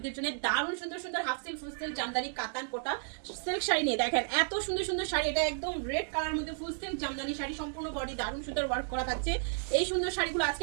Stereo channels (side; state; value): left; silent; digital silence